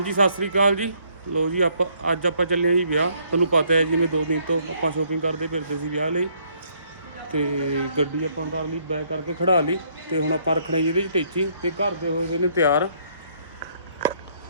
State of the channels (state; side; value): inverted; both; correlation -0.67